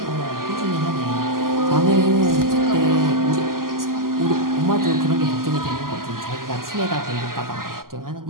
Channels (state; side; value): late; left; 0.91 ms